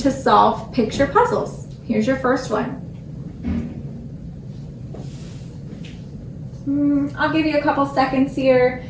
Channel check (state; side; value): identical; both; correlation 1.00